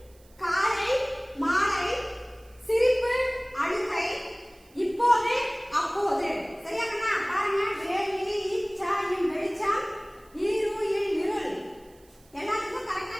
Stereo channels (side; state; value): right; noise; hiss, 29 dB below the sound